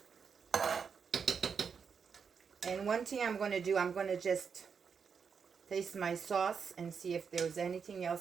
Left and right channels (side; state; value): left; quieter; 6.2 dB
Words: And one thing I'm going to do, I'm going to just taste my sauce and see if there's anything